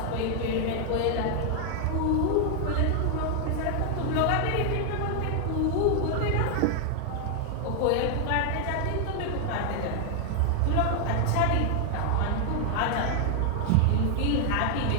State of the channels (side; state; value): both; different; correlation 0.00